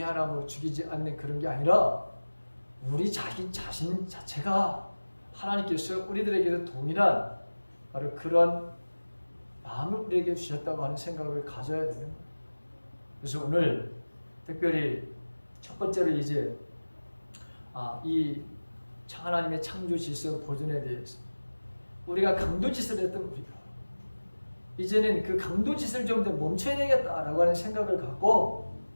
하나 죽이지 않는 그런 게 아니라 우리 자신 자체가 하나님께서 우리들에게도 동일한 바로 그런 마음을 우리에게 주셨다고 하는 생각을 가져야 되는 거예요. 그래서 오늘 특별히 첫 번째로 이제 이 하나님의 창조 질서 보존에 대해서 우리가 강도짓을 했던 우리가 이제는 그 강도짓을 좀 더 멈춰야 되겠다라고 하는 생각을 갖고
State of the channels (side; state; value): both; inverted; correlation -1.00